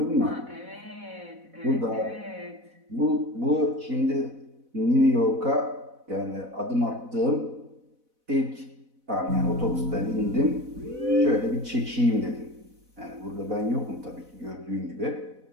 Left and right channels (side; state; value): left; late; 4.0 ms